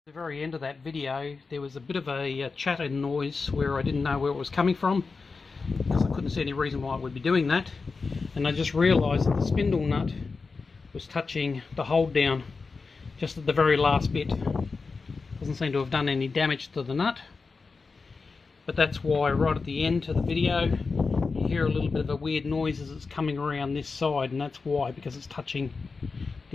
very end of that video, there was a bit of a chattering noise where I didn't know where it was coming from, because I couldn't see any reason why I would be doing that. And I just realised that the spindle nut was touching the hold down just at the very last bit. Doesn't seem to have done any damage to the nut, but that's why right at the end of the video you hear a little bit of a weird noise as it's coming around this side, and that's why, because it's touching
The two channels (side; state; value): right; quieter; 4.4 dB